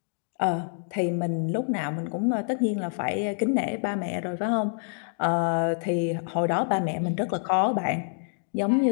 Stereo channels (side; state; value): right; silent; 60 dB below the other